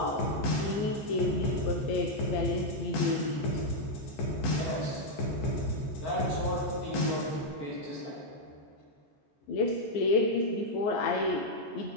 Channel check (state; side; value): late; right; 14 ms